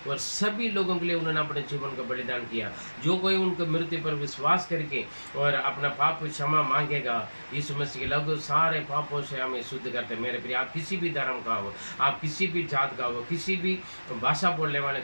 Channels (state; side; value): inverted; both; correlation -1.00